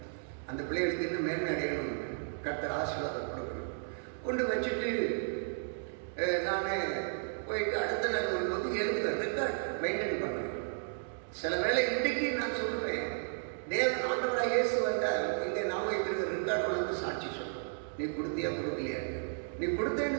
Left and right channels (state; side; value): silent; left; digital silence